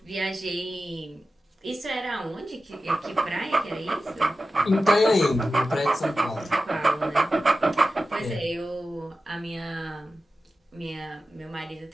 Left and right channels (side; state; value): both; normal; correlation 0.93